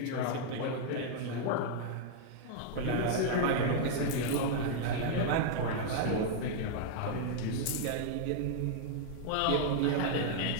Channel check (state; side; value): different; both; correlation -0.01